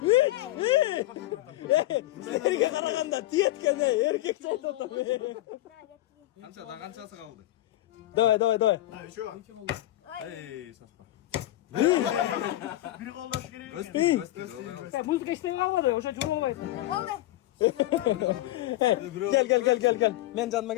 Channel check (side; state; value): right; quieter; 16.0 dB